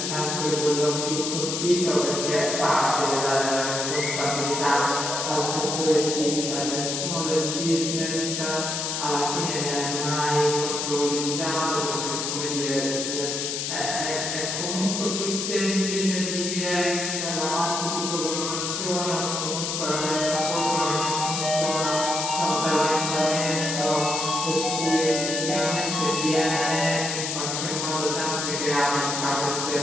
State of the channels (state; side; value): noise; left; hiss, 2 dB below the sound